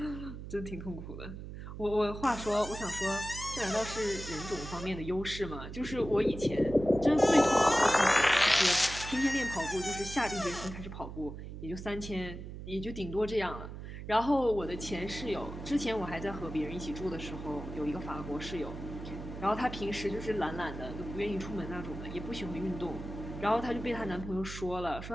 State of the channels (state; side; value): noise; right; hum, 10 dB below the sound